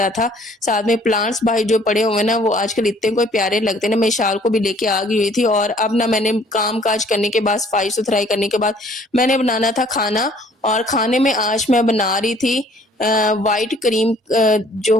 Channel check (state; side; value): normal; both; correlation 0.57